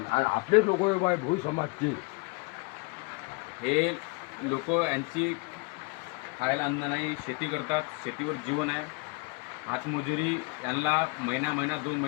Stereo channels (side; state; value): right; quieter; 28.4 dB